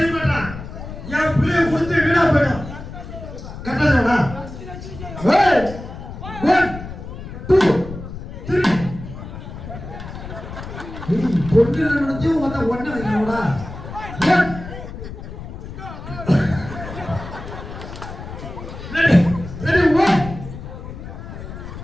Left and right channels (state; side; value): noise; left; rumble, 11 dB below the sound